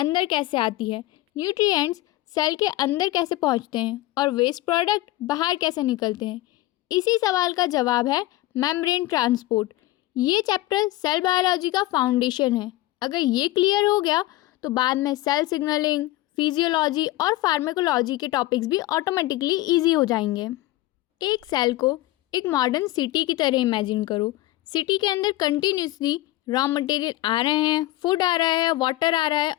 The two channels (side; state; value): right; quieter; 16.9 dB